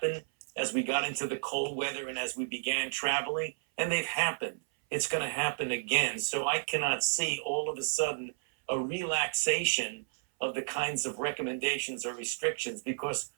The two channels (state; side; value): silent; left; 56 dB below the other